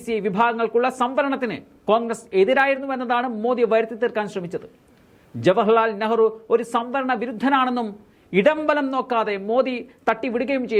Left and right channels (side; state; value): both; identical; correlation 1.00